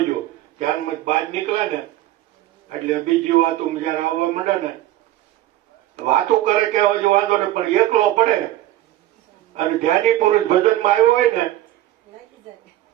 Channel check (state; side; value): quieter; left; 14.4 dB